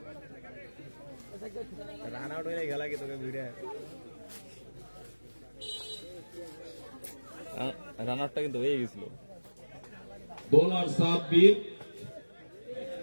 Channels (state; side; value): inverted; both; correlation -1.00